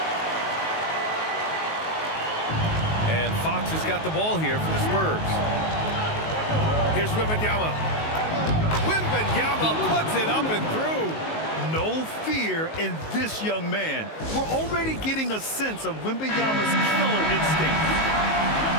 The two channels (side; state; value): right; late; 19 ms